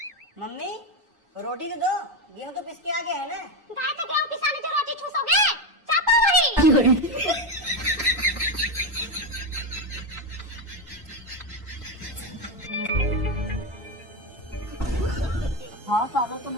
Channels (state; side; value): normal; both; correlation 0.11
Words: मम्मी रोटी तो दो, गेहूँ तो पिस के आ गया है ना। गाय तो गेहूँ पिसाने जो रोटी चूसोगे, चापो वही। हाँ सालों तुम